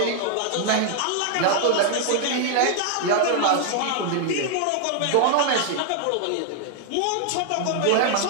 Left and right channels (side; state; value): both; different; correlation 0.00